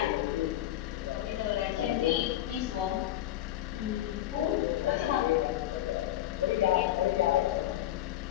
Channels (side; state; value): right; quieter; 13.6 dB